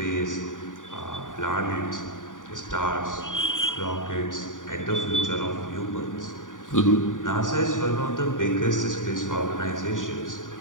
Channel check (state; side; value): late; right; 0.88 ms